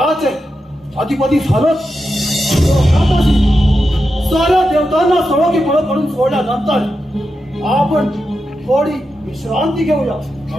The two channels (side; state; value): both; normal; correlation 0.88